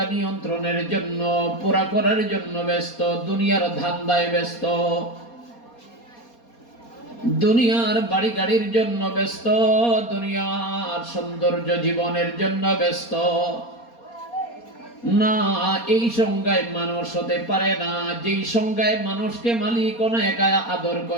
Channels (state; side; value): late; right; 4.2 ms